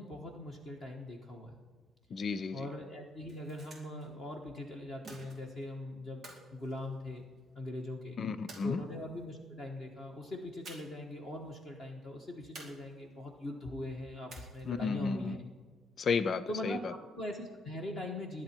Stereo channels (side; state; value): right; quieter; 3.0 dB